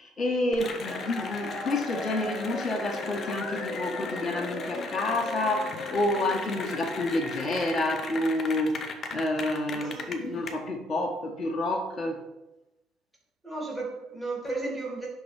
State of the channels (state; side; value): normal; both; correlation 0.67